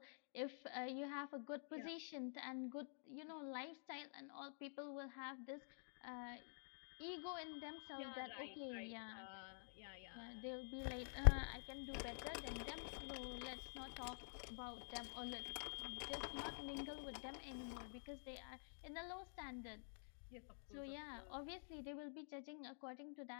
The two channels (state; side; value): silent; right; digital silence